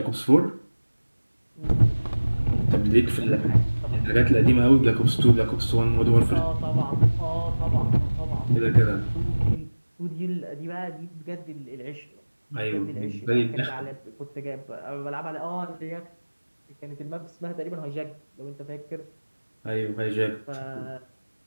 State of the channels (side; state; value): both; inverted; correlation -1.00